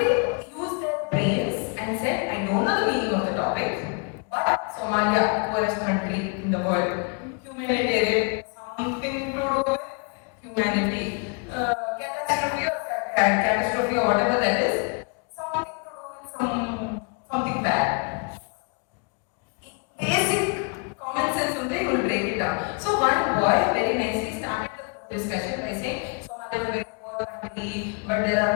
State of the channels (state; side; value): quieter; right; 37.9 dB